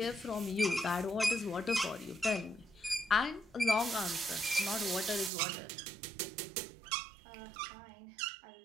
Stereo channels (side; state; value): left; drops out; at 5.3 s